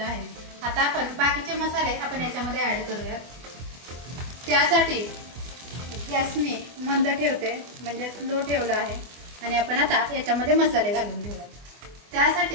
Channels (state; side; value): late; left; 24 ms